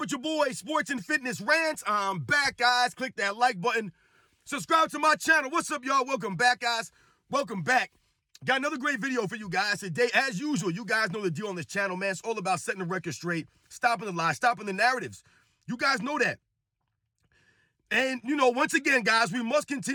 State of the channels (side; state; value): both; identical; correlation 1.00